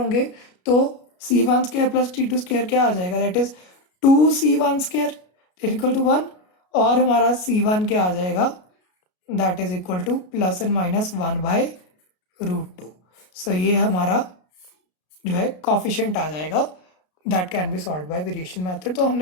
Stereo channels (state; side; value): late; right; 33 ms